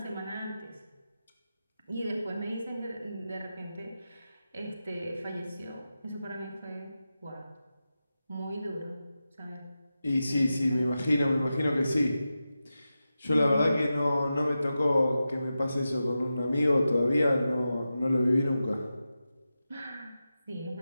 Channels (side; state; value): both; inverted; correlation -0.92